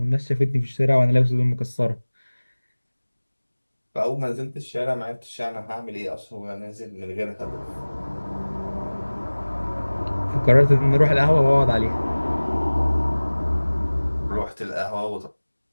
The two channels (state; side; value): inverted; both; correlation -1.00